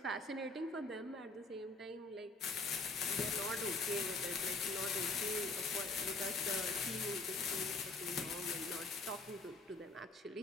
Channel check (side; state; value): right; quieter; 3.3 dB